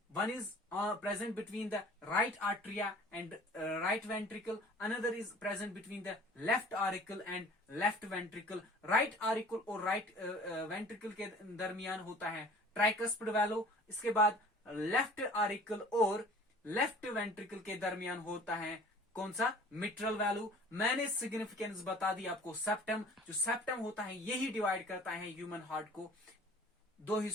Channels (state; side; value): normal; both; correlation 0.47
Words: One is present between the right atria and right ventricle. Another is present between the left auricle and left ventricle. Right auricle और right ventricle के दरमियान होता है tricuspid valve. इसके बाद left auricle और left ventricle के दरमियान होता है कौन सा, मिट्रल वैल्यू। मैंने सिग्निफिकेंस बता दी आपको, सेप्टम, जो सेप्टम होता है यही डिवाइड करता है ह्यूमन हार्ट को दो